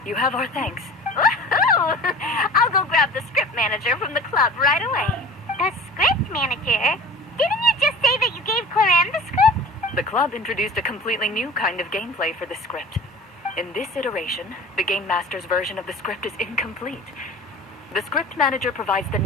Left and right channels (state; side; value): normal; both; correlation 0.41